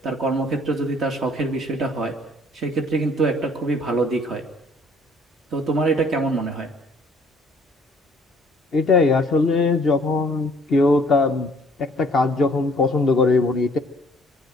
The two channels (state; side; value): normal; both; correlation 0.59